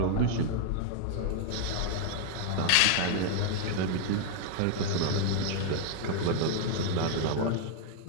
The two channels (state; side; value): different; both; correlation 0.00